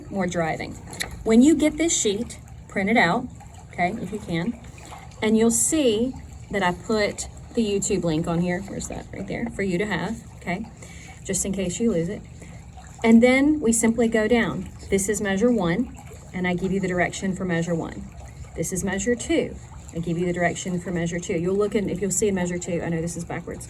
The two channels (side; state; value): both; identical; correlation 1.00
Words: more driving. When you get this sheet, print it out, okay, if you can, and you'll see that I put the YouTube link on here. Where's that? Right there, for you to have, okay, just in case you lose it. And then we simply go down. This is measure 1, and I give you the direction for measure 1. This is measure 2. I give you the direction for measure 2. You'll look in, if you'll see in measure 2, I know this is backwards,